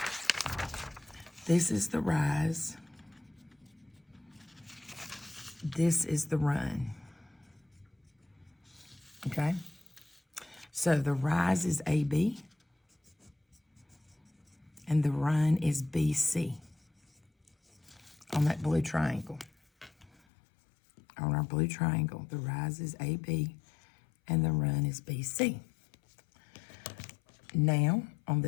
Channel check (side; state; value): right; drops out; at 20.1 s